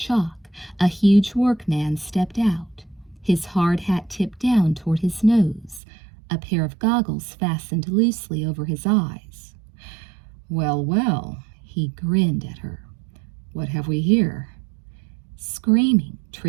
a huge workman stepped out, his hard hat tipped down toward his nose, a pair of goggles fastened loosely over his eyes. "Well, well," he grinned at her. "What have we here?" Screaming,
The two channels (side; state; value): left; drops out; at 5.8 s